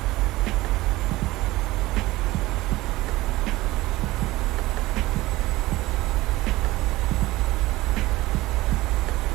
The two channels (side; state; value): left; quieter; 18.7 dB